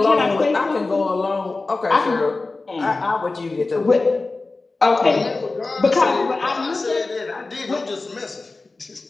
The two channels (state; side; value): quieter; right; 3.5 dB